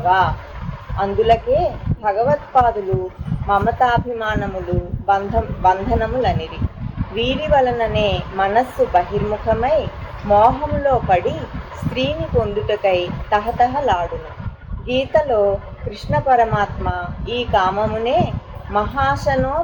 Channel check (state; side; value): identical; both; correlation 1.00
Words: అందులకే భగవత్పాదులు మమతాభిమానములు బంధనములనిరి. వీరి వలననే మనస్సు బహిర్ముఖమై మోహములో పడి స్త్రీని పొందుటకై తహతహలాడును. గీతలో కృష్ణ పరమాత్మ ఈ కామమునే మహాశనో